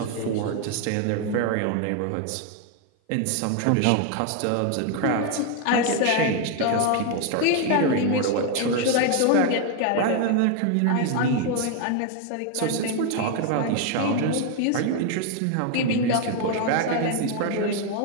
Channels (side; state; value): both; different; correlation 0.01